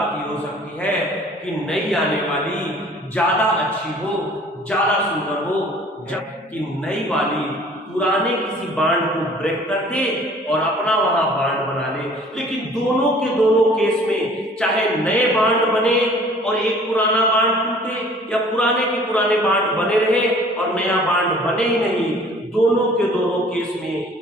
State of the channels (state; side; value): normal; both; correlation 0.51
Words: ये हो सकती है कि नई आने वाली ज्यादा अच्छी हो, ज्यादा सुंदर हो, जबकि नई वाली पुराने किसी बांड को ब्रेक कर दे और अपना वहां बांड बना ले। लेकिन दोनों के दोनों केस में चाहे नए बांड बने और एक पुराना बांड टूटे, या पुराने के पुराने बांड बने रहे और नया बांड बने ही नहीं, दोनों के दोनों केस में